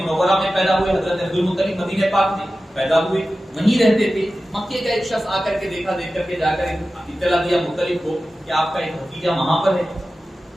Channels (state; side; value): normal; both; correlation 0.94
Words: منورہ میں پیدا ہوئے، حضرت عبد المطلب مدینہ پاک میں پیدا ہوئے، وہیں رہتے تھے۔ مکے کا ایک شخص آ کر کے دیکھا، دیکھ کر کے جا کر اطلاع دیا مطلب کو کہ آپ کا ایک بھتیجا وہاں پر ہے،